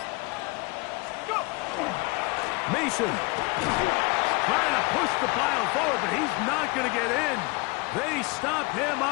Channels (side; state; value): right; quieter; 26.4 dB